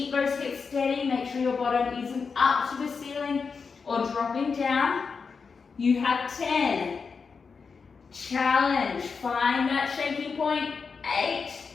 those hips steady, make sure your bottom isn't up to the ceiling or dropping down. You have 10. Challenge, find that shaky point. 8.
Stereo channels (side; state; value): right; quieter; 5.3 dB